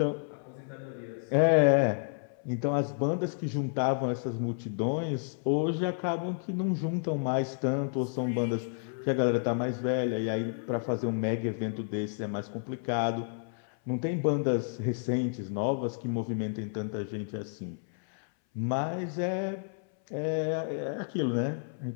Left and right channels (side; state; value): right; silent; 57 dB below the other